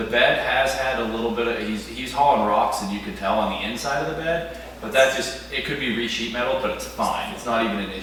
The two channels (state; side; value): identical; both; correlation 1.00